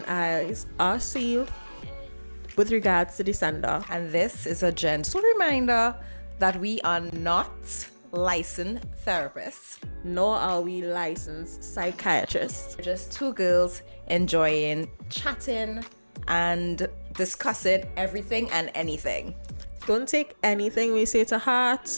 eyes are sealed with regards to the sender. And this is a gentle reminder that we are not licensed therapists, Nor are we licensed psychiatrists. we're just two girls enjoying chatting and discussing everything and anything. Don't take anything we say to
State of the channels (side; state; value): both; inverted; correlation -1.00